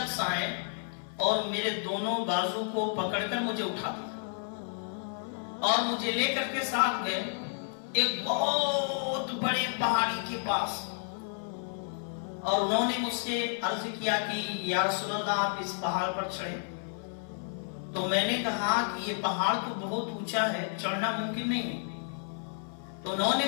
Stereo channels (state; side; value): silent; right; 57 dB below the other